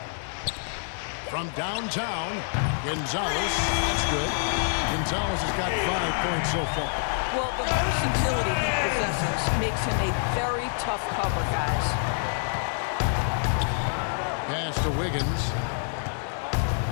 From downtown, Gonzales. That's good. Gonzales has got 5 points so far. Well, the versatility he possesses makes him a very tough cover, guys. Pass to Wiggins.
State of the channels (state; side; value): silent; right; digital silence